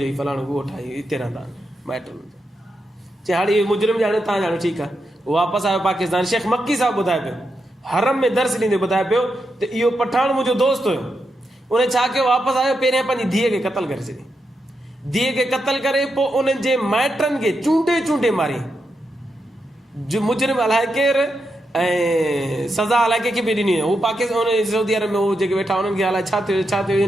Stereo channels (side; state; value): both; normal; correlation 0.85